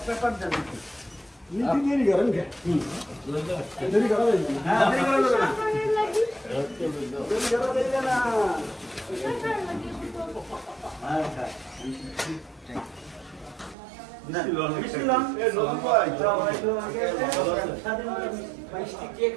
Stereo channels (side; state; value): left; drops out; at 13.8 s